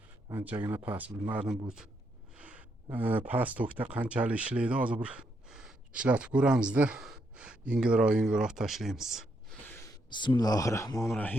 Anchagina past, bilmadim bu past tokda qanchalik ishlaydi. Hozir bir ishlatib ko'ramizda. Yengilroq tashlaymiz.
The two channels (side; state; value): both; normal; correlation 0.78